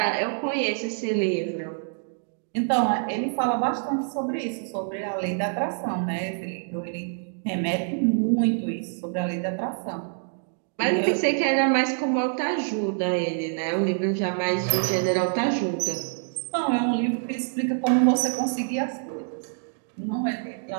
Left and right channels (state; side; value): silent; left; digital silence